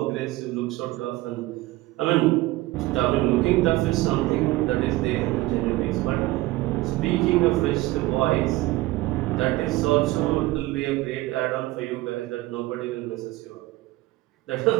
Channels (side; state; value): left; quieter; 18.6 dB